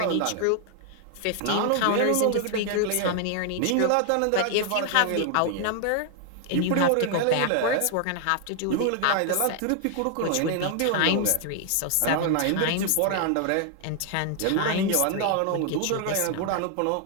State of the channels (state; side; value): different; both; correlation 0.00